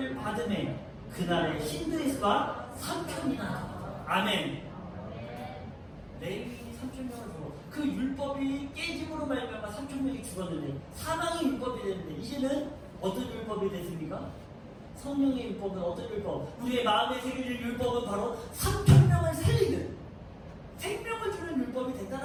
받음에 그날의 신들의 수가 3,000이나. 아멘. 레위인이 3,000명을 주고 그 율법이 깨짐으로 말미암아 3,000명이 죽었는데 사망이 율법이 됐는데 이제는 어떤 율법이 됐습니까? 성령의 율법은 어떤 율법? 우리의 마음에 새겨질 율법은 바로 3,000명을 살리는 생명을 주는 율법이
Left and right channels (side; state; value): both; identical; correlation 1.00